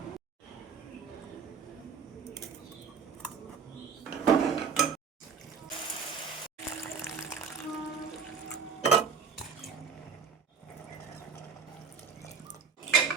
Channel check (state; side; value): quieter; left; 6.1 dB